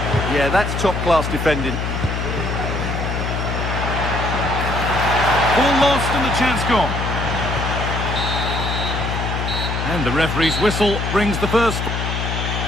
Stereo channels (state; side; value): noise; left; hum, 2 dB below the sound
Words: Yeah, that's top-class defending. Ball lost and the chance gone. And the referee's whistle brings the first.